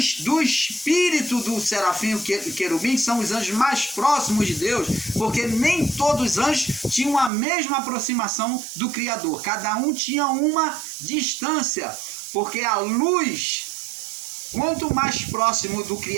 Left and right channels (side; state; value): left; drops out; at 7.3 s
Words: espírito do serafim e querubim, que são os anjos mais próximos de Deus, porque nem todos os anjos tinham a mesma aproximação do Criador, cada um tinha uma distância, porque a luz, quanto mais próximo do